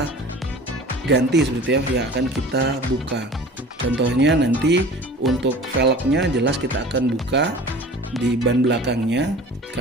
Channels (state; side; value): normal; both; correlation 0.41